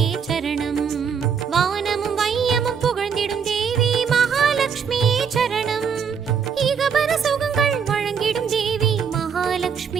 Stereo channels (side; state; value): left; quieter; 6.8 dB